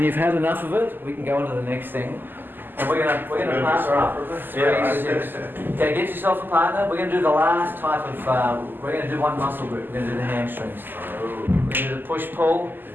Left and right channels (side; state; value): left; late; 0.092 ms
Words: you've had enough of it, we can go on to the next thing. And we're gonna partner up. 3, 6. Okay, get yourself a partner. We're gonna do the last type of, we're gonna do one muscle group. We're gonna do the hamstrings. We're gonna do the push-pull.